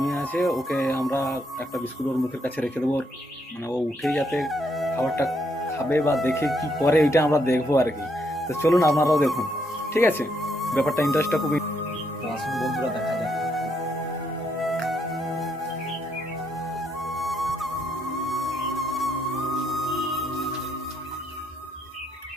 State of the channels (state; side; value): normal; both; correlation 0.75